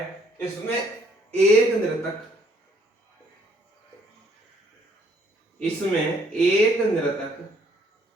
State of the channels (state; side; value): normal; both; correlation 0.65